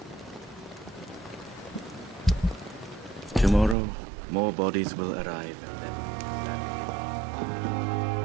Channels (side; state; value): left; drops out; at 3.8 s